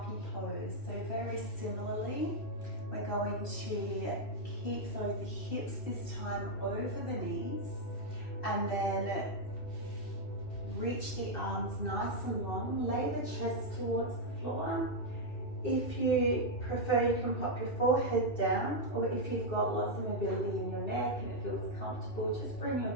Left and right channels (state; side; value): late; right; 2.6 ms